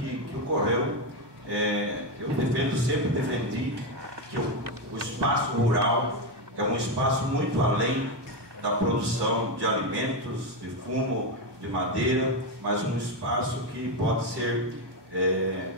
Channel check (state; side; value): late; left; 1.2 ms